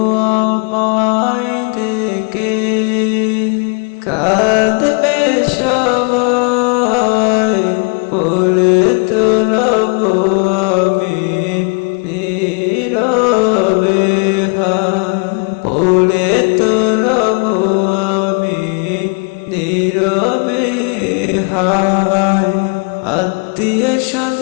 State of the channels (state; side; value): quieter; right; 34.7 dB